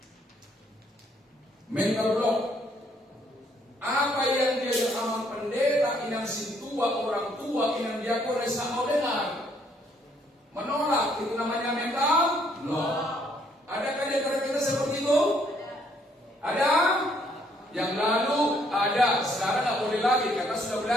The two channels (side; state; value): both; normal; correlation 0.68